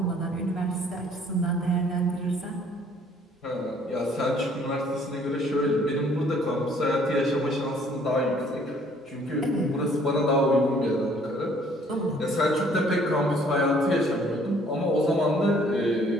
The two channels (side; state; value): both; normal; correlation 0.60